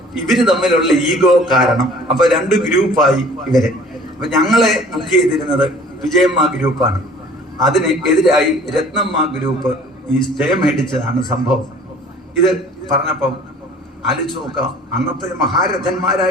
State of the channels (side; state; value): both; normal; correlation 0.50